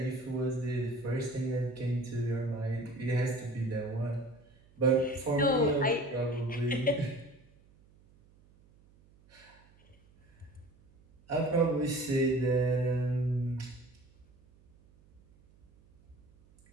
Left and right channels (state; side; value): noise; right; hum, 29 dB below the sound